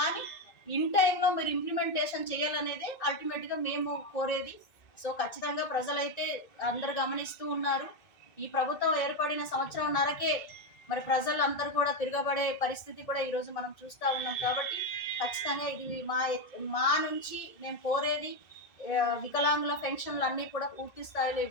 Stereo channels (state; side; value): late; right; 2.6 ms